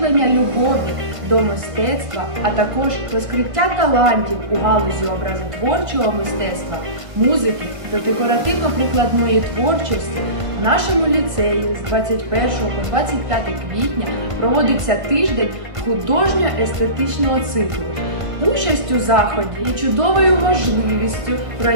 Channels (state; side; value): late; left; 1.5 ms